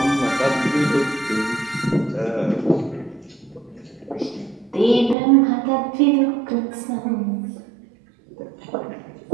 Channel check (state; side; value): drops out; left; at 5.2 s